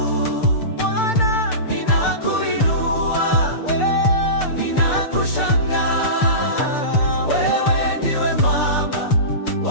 Bwana, ninakuinua, ninakushangaa. Wewe ndiwe mwamba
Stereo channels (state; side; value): late; right; 6.7 ms